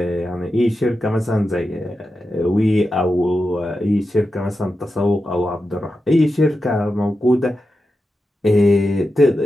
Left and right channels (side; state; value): both; normal; correlation 0.90